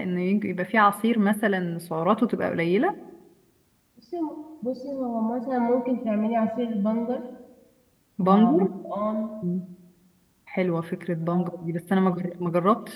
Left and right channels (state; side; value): identical; both; correlation 1.00